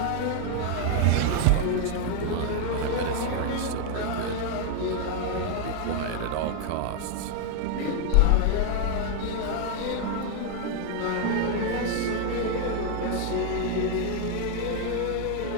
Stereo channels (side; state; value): both; different; correlation 0.00